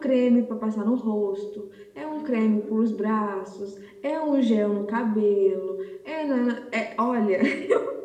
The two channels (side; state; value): both; identical; correlation 1.00